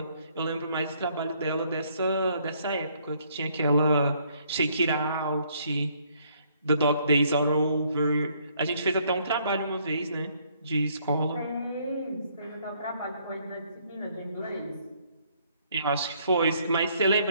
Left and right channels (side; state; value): both; inverted; correlation -0.67